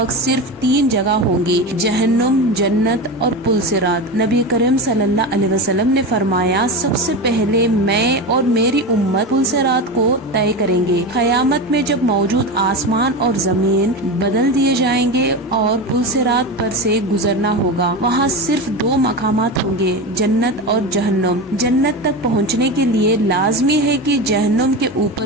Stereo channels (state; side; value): normal; both; correlation 0.22